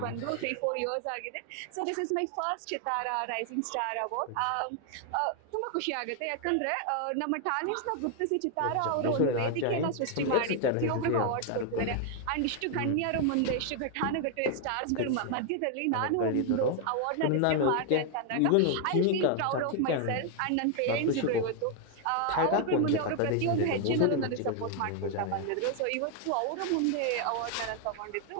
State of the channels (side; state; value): both; different; correlation 0.00